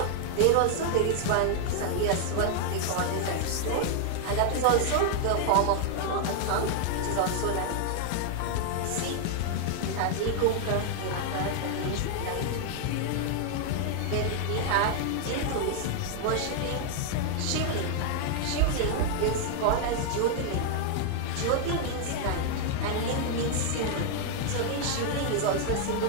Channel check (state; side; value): different; both; correlation 0.00